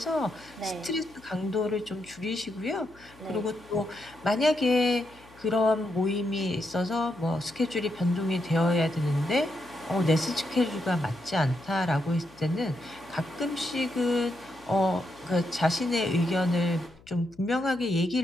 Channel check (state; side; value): noise; left; hum, 25 dB below the sound